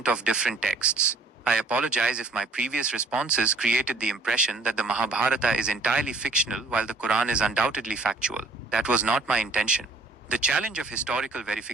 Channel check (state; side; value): quieter; left; 3.3 dB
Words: of different texts. I apologize if my previous responses created the impression that the Mahabharata is entirely fictional while the Quran is undoubtedly factual. That was not my intention. The challenge of historical